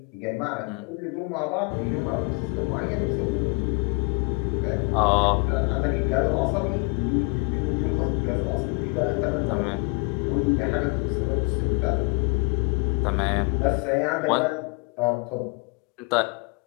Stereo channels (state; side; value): quieter; right; 32.2 dB